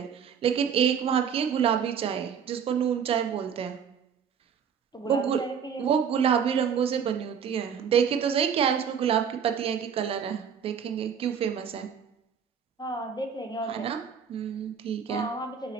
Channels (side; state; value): left; quieter; 7.4 dB